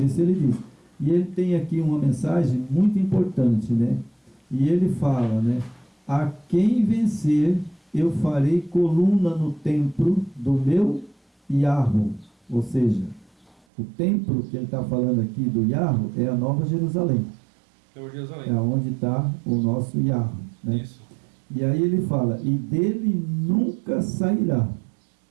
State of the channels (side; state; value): left; drops out; at 13.7 s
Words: isso ele diz. E ele tem aqui uma mensagem muito importante, né? E ele fala, né? A quem vencer, eu farei coluna no templo do meu Yahweh. Ou seja, o templo que ele está falando aqui do Yahweh é a Nova Jerusalém. Jerusalém. É onde está o nosso Yahweh. Né? Isso. E aí ele fala, e dele nunca sairá.